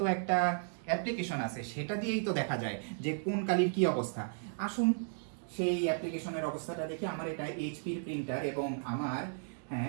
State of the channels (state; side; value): silent; left; digital silence